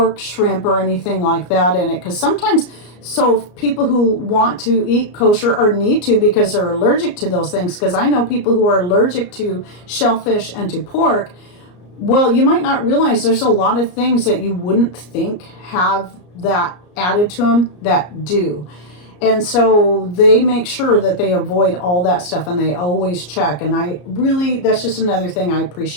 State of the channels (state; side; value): late; right; 34 ms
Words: shrimp, or anything like that in it. Because sometimes, so people who want to eat kosher or need to because they're allergic to those things, because I know people who are allergic to shellfish and to pork, well, you might not realize there's a lot of things that you wouldn't think have that added to them that do. And so they make sure that they avoid all that stuff, and they always check. And that's just another thing I